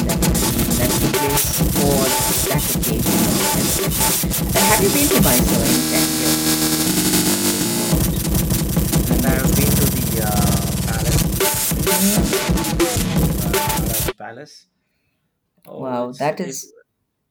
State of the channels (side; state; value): both; identical; correlation 1.00